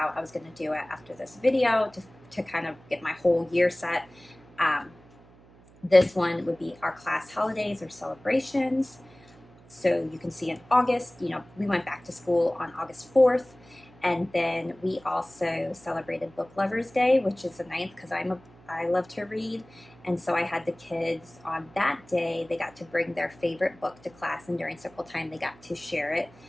I was going to do it after this video to kind of get my whole year set. This one would be our class holidays or celebrations. So you can see in August, we went back to school on August 4th. And then we also celebrated Book Lovers Day, which is the 9th because I love to read. And so I had the kids on that day, they got to bring their favorite book to class, and during circle time they got to share it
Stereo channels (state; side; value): noise; right; hum, 25 dB below the sound